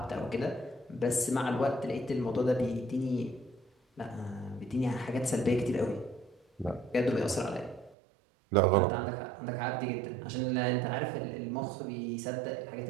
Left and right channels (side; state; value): left; drops out; at 8.0 s